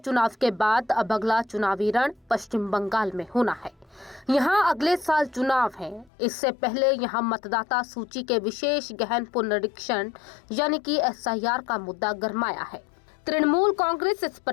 के बाद अब अगला चुनावी रण पश्चिम बंगाल में होना है। यहां अगले साल चुनाव है। इससे पहले यहां मतदाता सूची के विशेष गहन पुनरीक्षण यानी कि SIR का मुद्दा गरमाया है। तृणमूल कांग्रेस इस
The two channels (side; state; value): right; drops out; at 6.1 s